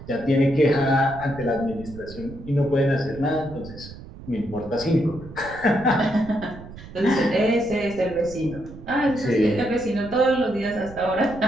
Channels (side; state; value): right; noise; rumble, 15 dB below the sound